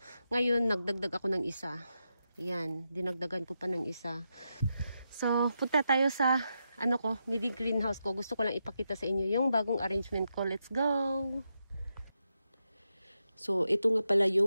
ngayon, nagdagdag ako ng isa. Ayan, dinagdagan ko pa ng isa. So, punta tayo sa, mini greenhouse ko. Gusto ko lang ipakita sa inyo yung bagong arrangement ko. Let's go! So, ito nga pala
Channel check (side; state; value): both; inverted; correlation -0.85